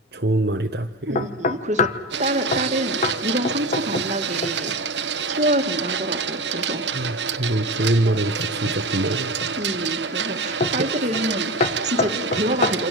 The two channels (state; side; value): normal; both; correlation 0.25